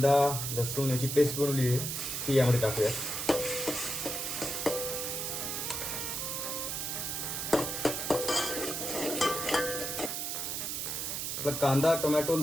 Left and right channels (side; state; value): right; noise; hiss, 3 dB below the sound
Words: लसूण याची पेस्ट बनवली आहे ती यामध्ये टाकूयात. आपला कांदा, टोमॅटो,